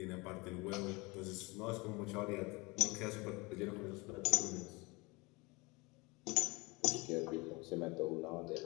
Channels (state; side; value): quieter; right; 25.7 dB